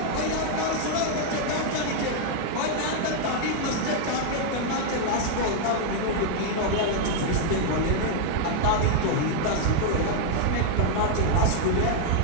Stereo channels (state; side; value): different; both; correlation 0.00